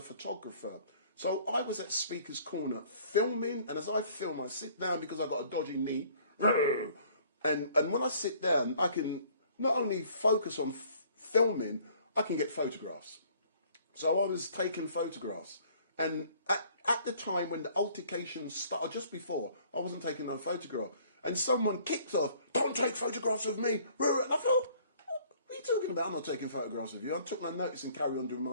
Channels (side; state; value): both; inverted; correlation -0.57